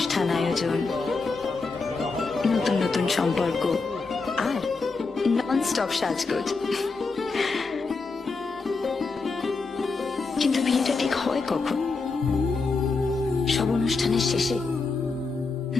আয়োজন, নতুন নতুন সম্পর্ক আর নন স্টপ সাজগোজ। কিন্তু বিয়েটা ঠিক হয় কখন? সব অনুষ্ঠানের শেষে,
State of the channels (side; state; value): right; quieter; 4.1 dB